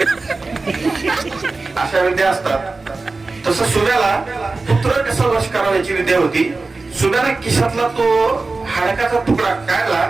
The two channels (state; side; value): quieter; left; 3.7 dB